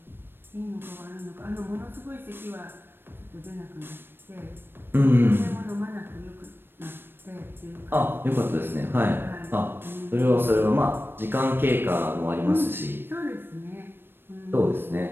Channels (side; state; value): left; late; 0.10 ms